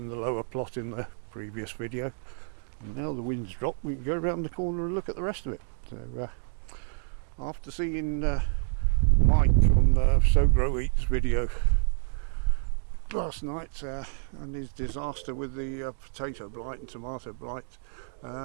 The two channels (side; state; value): left; silent; 59 dB below the other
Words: the lower plot in the previous video, and now the wind's dropped, we can go around the corner and look at the rest of it. So after seeing Mike on the Sow Grow Eats video last night and his disaster with the potato blight and tomato blight,